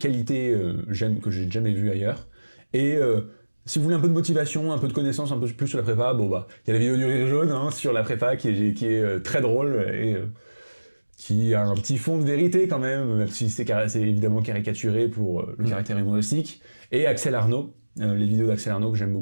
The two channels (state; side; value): inverted; both; correlation -1.00